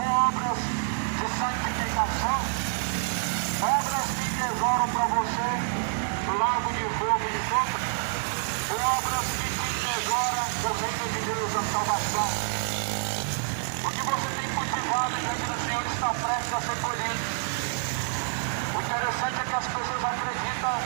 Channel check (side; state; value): left; silent; 60 dB below the other